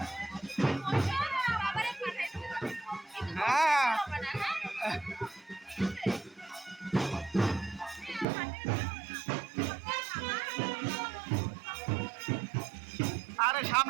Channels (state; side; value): drops out; left; at 8.2 s